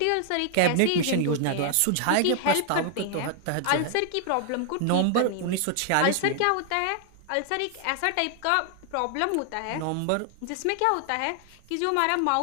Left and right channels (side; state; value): both; different; correlation 0.00